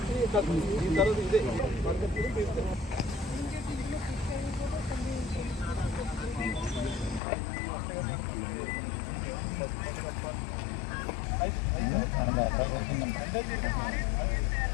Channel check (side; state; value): right; drops out; at 7.2 s